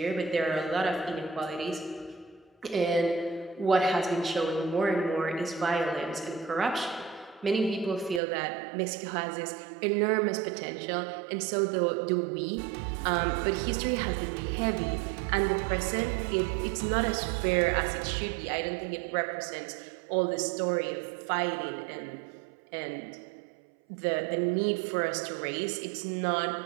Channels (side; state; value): left; drops out; at 8.2 s